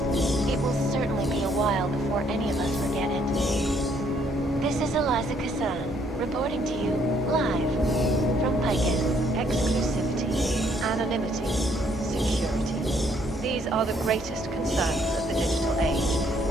It will certainly be a while before any of us forget it. This is Eliza Kazan, reporting to you, live, from Picus. Exclusivity, anonymity, security. These are the greatest concerns of the digital age.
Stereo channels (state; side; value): normal; both; correlation 0.67